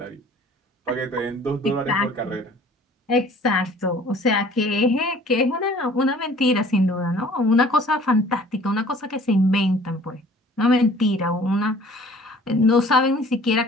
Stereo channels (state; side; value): normal; both; correlation 0.51